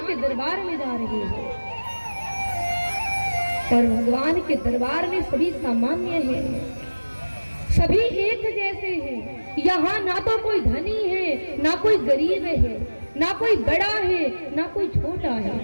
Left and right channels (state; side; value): inverted; both; correlation -1.00